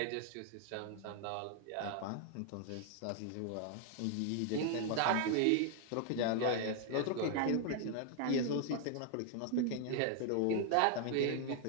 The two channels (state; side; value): different; both; correlation 0.00